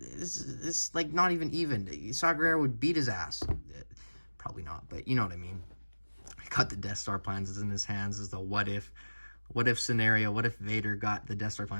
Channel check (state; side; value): inverted; both; correlation -1.00